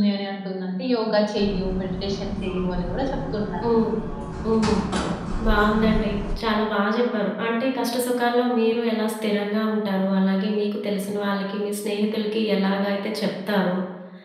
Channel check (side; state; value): both; identical; correlation 1.00